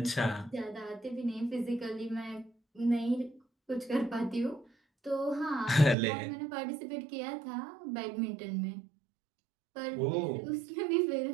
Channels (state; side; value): drops out; left; at 6.0 s